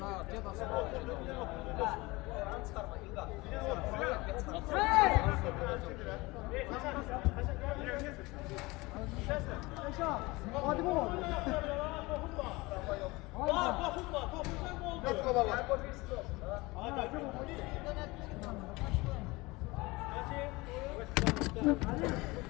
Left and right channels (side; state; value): right; quieter; 22.7 dB